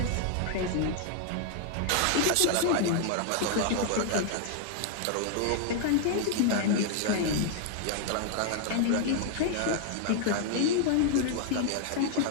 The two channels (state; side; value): different; both; correlation 0.00